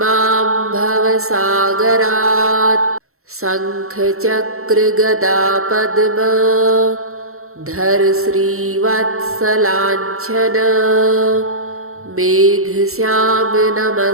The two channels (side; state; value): left; late; 0.63 ms